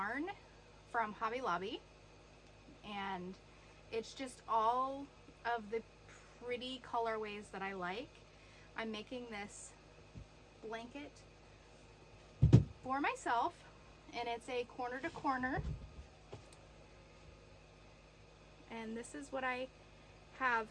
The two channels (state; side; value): identical; both; correlation 1.00